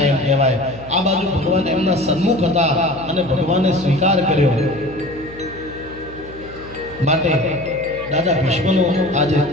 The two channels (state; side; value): noise; left; hum, 18 dB below the sound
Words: કહેવાય। આ બાજુ ભગવાન એમના સન્મુખ હતા અને ભગવાને સ્વીકાર કર્યો, માટે દાદા ભીષ્મનો આજે